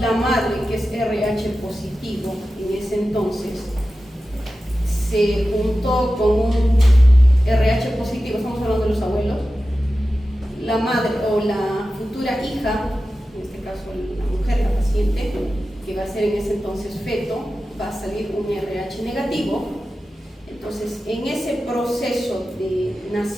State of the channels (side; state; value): both; normal; correlation 0.93